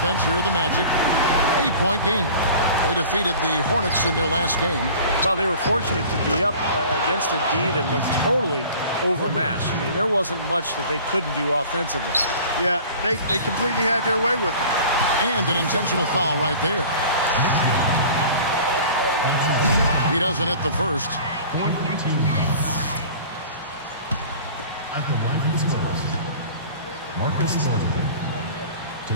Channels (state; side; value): inverted; both; correlation -0.43